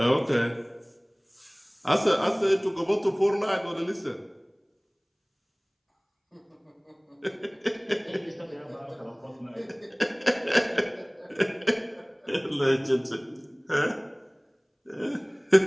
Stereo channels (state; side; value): identical; both; correlation 1.00